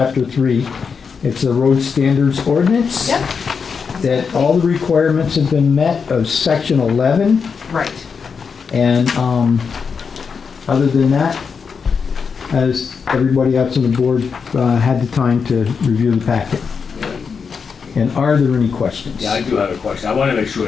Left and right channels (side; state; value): right; quieter; 5.8 dB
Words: 3, it's the Road Standards Ordinance. Yep, That all the requirements have been met of Section 11, right. and other than that, has everybody else on the board had the time to review the packet? And are there any questions? Yeah, I do have a question. I want to make sure